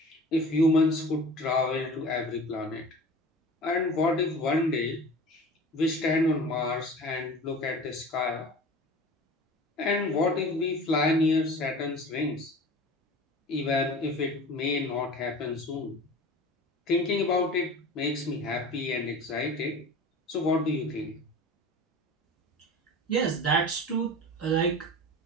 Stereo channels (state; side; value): normal; both; correlation 0.38